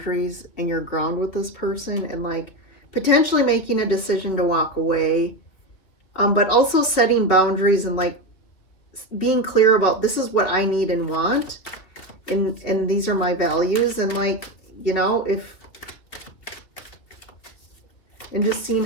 and your ground with this person, and like potentially making a decision to walk away. But also setting boundaries and like being clear about, this is what I need and want. And these are my values. And like, you know, and just seeing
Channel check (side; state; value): right; late; 2.8 ms